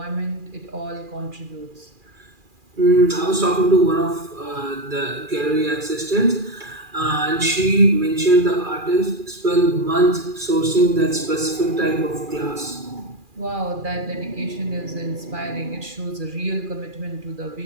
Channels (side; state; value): left; late; 2.4 ms